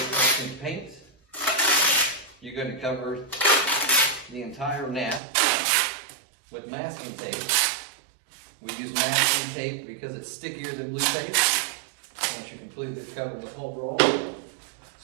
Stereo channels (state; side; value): drops out; left; at 5.2 s